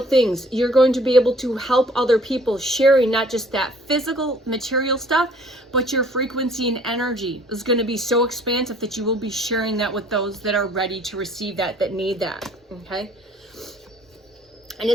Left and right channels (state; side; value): normal; both; correlation 0.56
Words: things. You're going to be able to help other people, sharing not just that physical material stuff, but your frequency and energy is going to be so expansive that you will be sharing that with those that are ready to receive that need that, okay? And